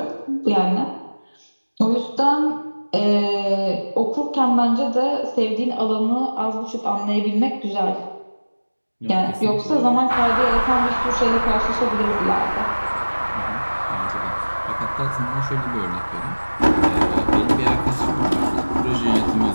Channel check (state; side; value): inverted; both; correlation -1.00